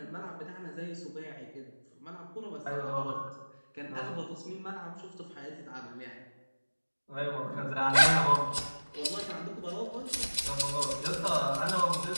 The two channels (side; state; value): both; inverted; correlation -1.00